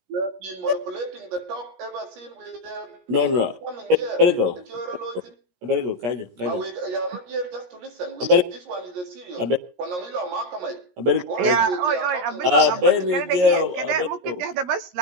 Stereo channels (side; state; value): left; late; 17 ms